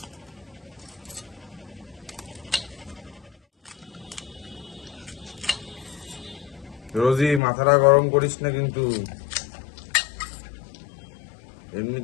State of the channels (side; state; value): right; drops out; at 7.4 s